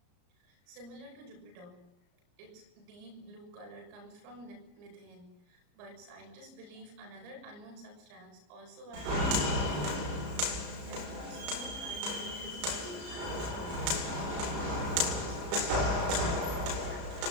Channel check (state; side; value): late; left; 34 ms